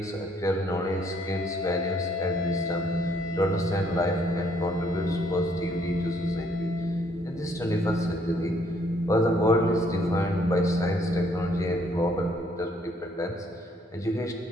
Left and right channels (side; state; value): both; normal; correlation 0.66